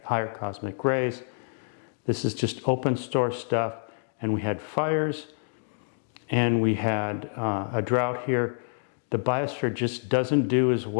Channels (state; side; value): silent; right; digital silence